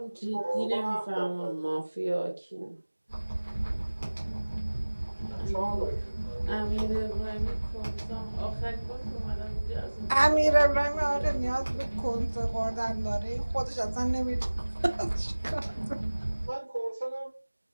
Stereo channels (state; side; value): inverted; both; correlation -1.00